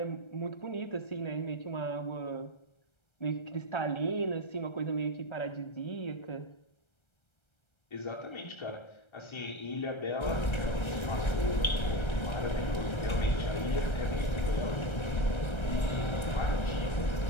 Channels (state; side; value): late; right; 1.3 ms